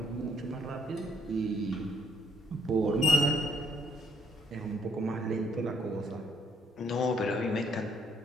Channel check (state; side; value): normal; both; correlation 0.68